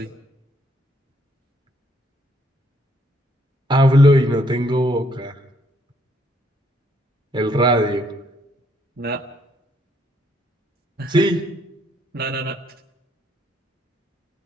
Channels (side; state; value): both; normal; correlation 0.69